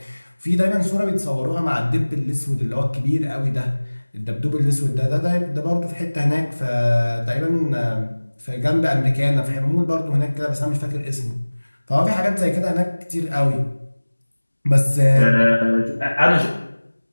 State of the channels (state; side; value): inverted; both; correlation -1.00